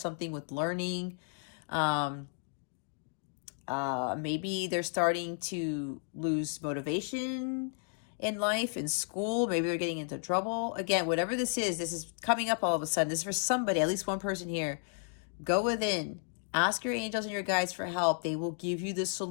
with learning. Maybe they're starting to lose motivation in life, in school. Maybe they're getting into trouble. Again, whatever this is coming up all of a sudden. This is for somebody, at least one person here. Go within, ask your angels and your guides for help. They will give you the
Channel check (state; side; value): silent; right; 56 dB below the other